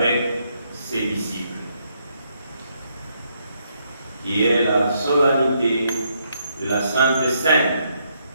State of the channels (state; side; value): inverted; both; correlation -0.75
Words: ses disciples, qui est la solennité de la Sainte Seine